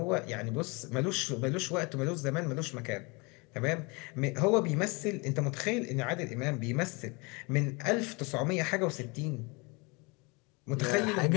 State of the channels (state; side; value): quieter; right; 28.6 dB